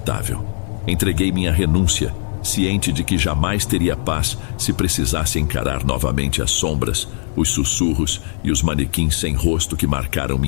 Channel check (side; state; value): right; silent; digital silence